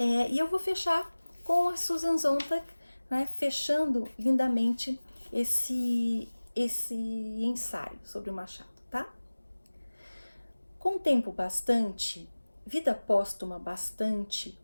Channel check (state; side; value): inverted; both; correlation -1.00